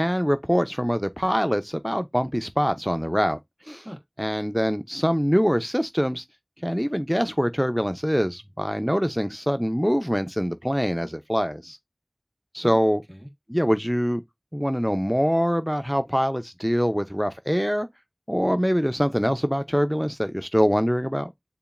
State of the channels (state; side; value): identical; both; correlation 1.00